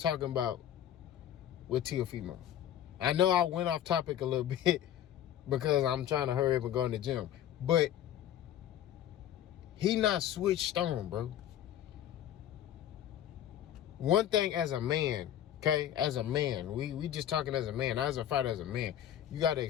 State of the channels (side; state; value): right; quieter; 11.1 dB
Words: about with Teofemo. I know I went off topic a little bit because I'm trying to hurry up and go in the gym. But he not switched on, bro. One thing as a man, okay, as a man, we just talking as a man, not as a fighter, as a man, you got to